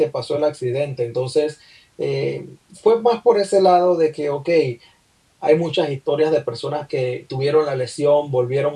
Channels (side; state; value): both; identical; correlation 1.00